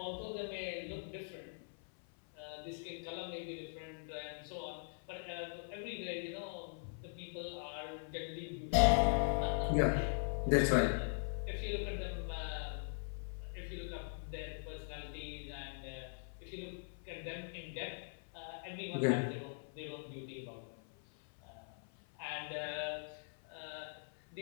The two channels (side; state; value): right; silent; 50 dB below the other